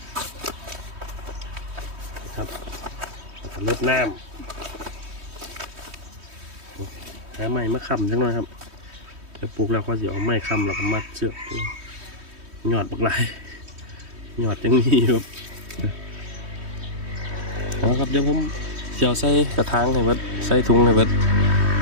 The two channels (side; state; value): left; late; 3.2 ms